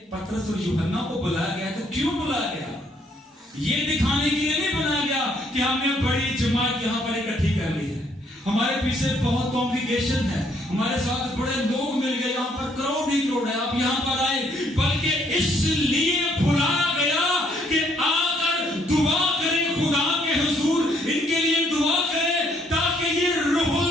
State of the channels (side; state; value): both; normal; correlation 0.68